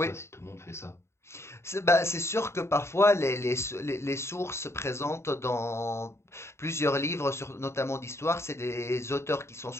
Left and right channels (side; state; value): right; late; 0.13 ms